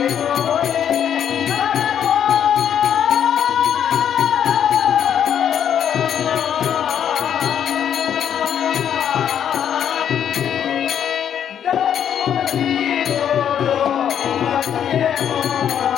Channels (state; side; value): quieter; right; 9.1 dB